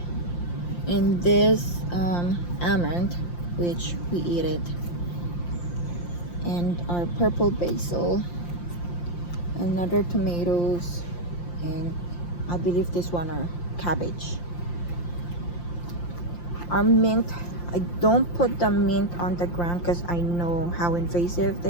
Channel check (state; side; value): late; right; 5.8 ms